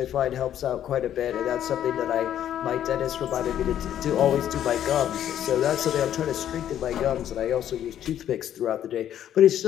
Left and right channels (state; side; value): quieter; right; 10.8 dB